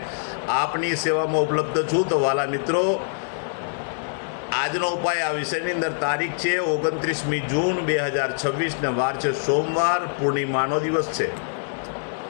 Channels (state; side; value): silent; right; digital silence